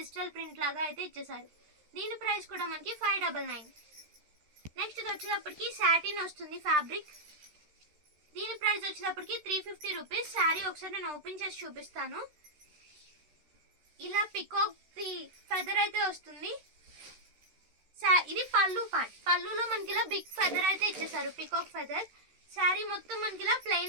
ప్రింట్ లాగా అయితే ఇచ్చేసారు. దీని ప్రైస్ కూడా మనకి 599. నెక్స్ట్ ఇది వచ్చేటప్పటికి సాటిన్ వస్తుంది ఫ్యాబ్రిక్. దీని ప్రైస్ వచ్చేటప్పటికి 350 రూపీస్. శారీ ఒకసారి నేను ఓపెన్ చేసి చూపిస్తాను. ఇలా పికాక్ ది ఫెదర్ అయితే వస్తుంది. ఇది పళ్ళు పార్ట్. పళ్ళులో మనకి ఇలా బిగ్ ఫెదర్ అయితే ఇచ్చేసారు, పికాక్ ఫెదర్. శారీ మొత్తం మనకి ఇలా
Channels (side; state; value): left; late; 13 ms